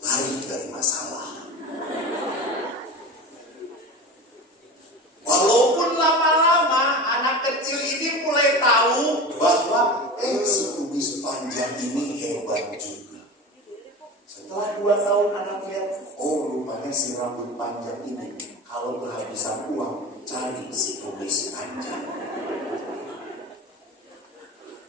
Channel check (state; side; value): normal; both; correlation 0.29